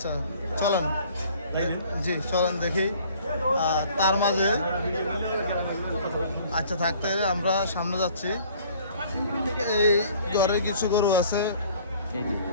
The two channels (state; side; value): inverted; both; correlation -0.54